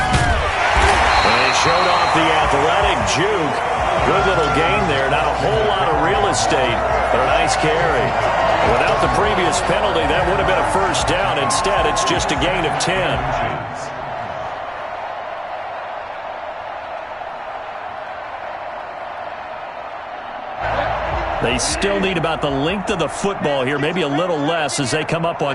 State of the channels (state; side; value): identical; both; correlation 1.00